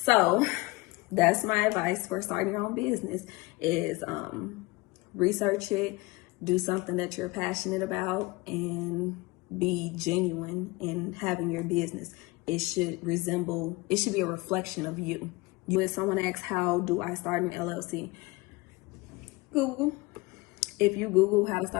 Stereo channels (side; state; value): right; quieter; 23.2 dB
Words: that's my advice for starting your own business is research it, do something that you're passionate about, and be genuine in having your business. it should be a reflection of you. If someone asks, how do I start an LLC? Google. If you Google how to